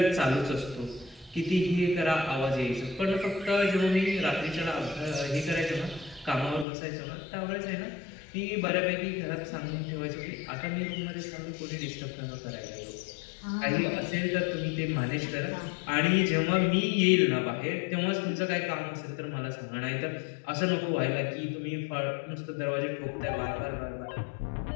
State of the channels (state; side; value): drops out; right; at 6.7 s